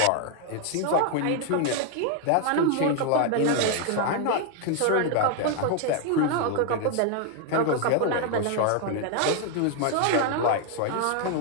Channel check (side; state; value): both; different; correlation 0.00